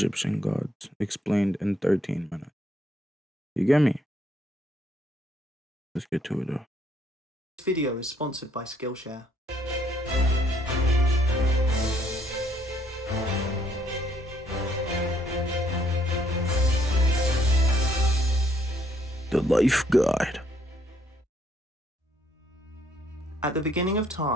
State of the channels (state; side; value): normal; both; correlation 0.68